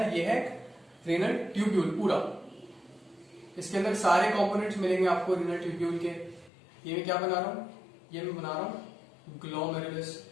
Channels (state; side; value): drops out; right; at 6.5 s